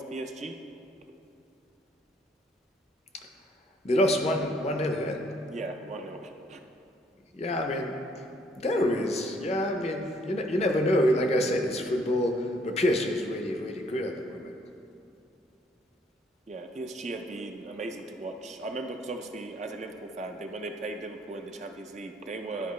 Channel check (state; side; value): normal; both; correlation 0.65